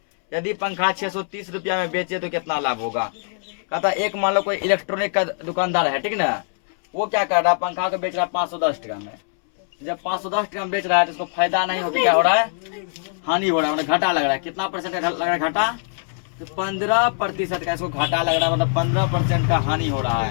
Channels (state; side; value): silent; right; 63 dB below the other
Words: यदि पंखा 630 रुपया में बेचे तो कितना लाभ होगा। कहता एक मान लो कोई इलेक्ट्रॉनिक का दुकानदार है, ठीक ना, वो क्या कर रहा है, पंखा को बेच रहा है 510 टका में। जब 510 टका में बेच रहा है तो उसको फायदा नहीं होता, क्या हो रहा है, हानि हो रहा है, मतलब घाटा लग रहा है। कितना परसेंट का लग रहा है घाटा, तो 15% का इसको घाटा लग रहा है, मतलब 15% का हानि हो रहा